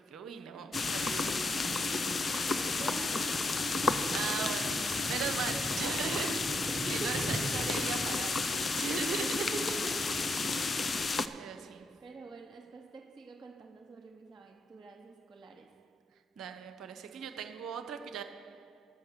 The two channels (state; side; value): normal; both; correlation 0.79